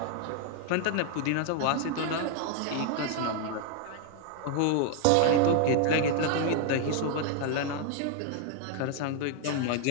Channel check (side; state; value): both; different; correlation 0.00